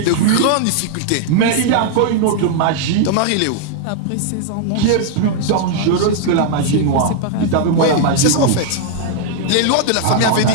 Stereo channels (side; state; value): both; different; correlation 0.00